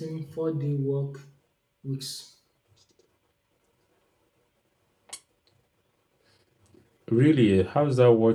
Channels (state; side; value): identical; both; correlation 1.00